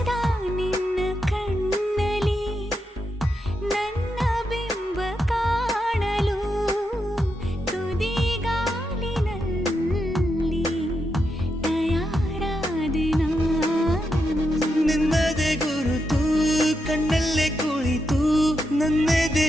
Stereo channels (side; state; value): both; normal; correlation 0.84